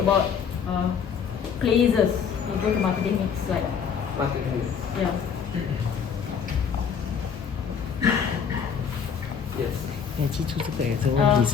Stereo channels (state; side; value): quieter; right; 7.0 dB